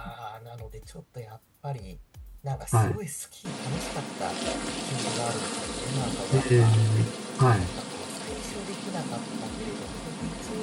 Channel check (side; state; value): both; identical; correlation 1.00